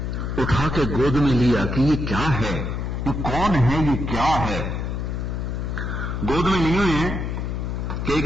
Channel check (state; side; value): noise; left; hum, 3 dB below the sound